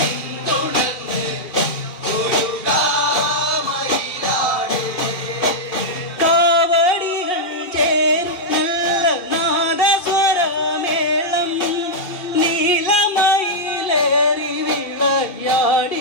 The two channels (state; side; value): late; right; 2.5 ms